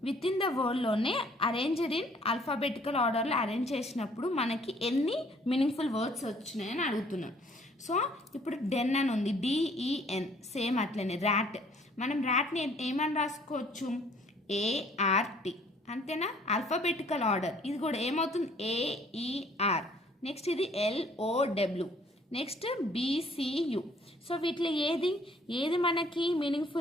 within the వర్డ్లోనే arranged in alphabetical ఆర్డర్లో arrange చేసినప్పుడు మనకి ఎన్ని meaningful words వచ్చినాయని అడుగుతున్నాం. So ఇప్పుడు డెన్ అని ఉంది, DEN, సేమ్ అట్లనే. ర్యాట్, మనం ర్యాట్ని ఏమని రాసుకోవచ్చు, ART, అంతేనా. ఆల్ఫాబెటికల్ ఆర్డర్ ఇది కూడా ఏమవుతుంది, AER. నెక్స్ట్ ఇది LOW, నెక్స్ట్ BCU. సో వీటిలో ఏది మనకి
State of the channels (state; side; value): normal; both; correlation 0.59